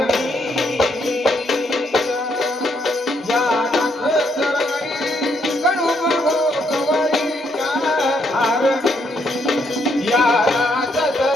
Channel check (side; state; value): both; normal; correlation 0.74